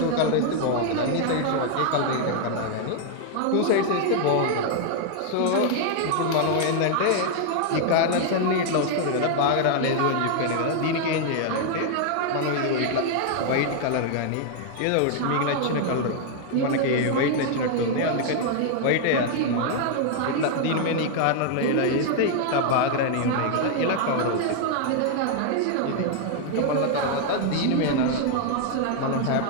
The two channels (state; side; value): different; both; correlation 0.00